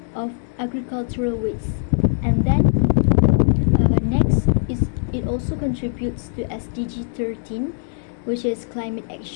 of agricultural waste. And then next is it also contributes to SDG 13, which is climate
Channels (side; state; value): right; silent; digital silence